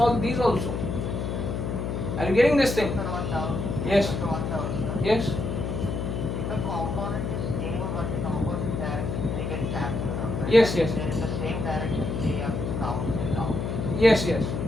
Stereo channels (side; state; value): left; noise; hum, 2 dB below the sound